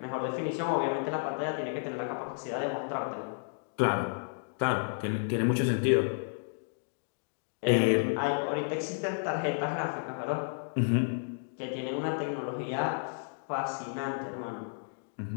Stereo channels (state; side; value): silent; right; digital silence